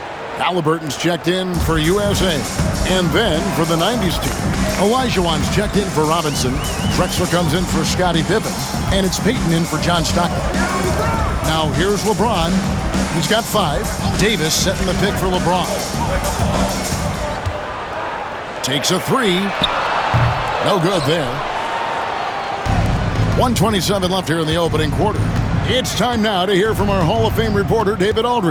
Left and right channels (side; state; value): both; identical; correlation 1.00